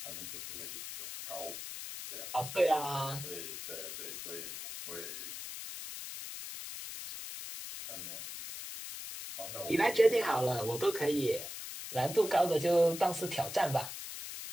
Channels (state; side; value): noise; left; hiss, 8 dB below the sound